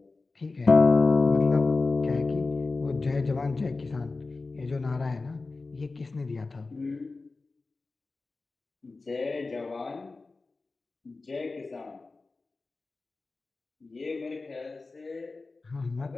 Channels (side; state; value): right; quieter; 3.7 dB